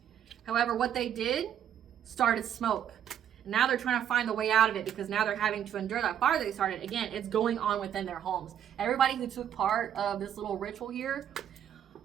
However, what they did started smoke. And now they're trying to find the way out of it because now they're having to endure that fire they started. Again, it's going on within their homes. Everybody who took part of this little ritual here,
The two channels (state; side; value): quieter; left; 9.7 dB